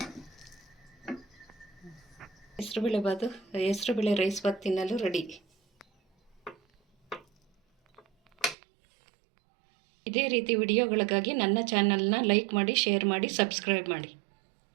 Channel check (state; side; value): drops out; left; at 8.6 s